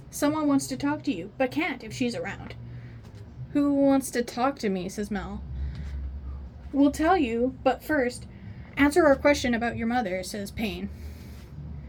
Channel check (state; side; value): identical; both; correlation 1.00